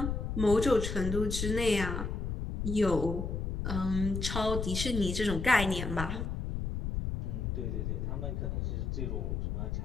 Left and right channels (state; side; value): noise; left; rumble, 2 dB below the sound